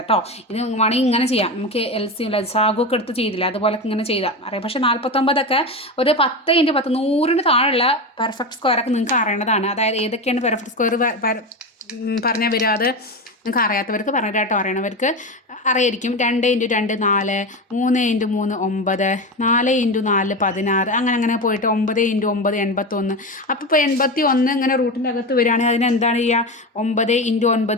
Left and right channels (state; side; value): normal; both; correlation 0.20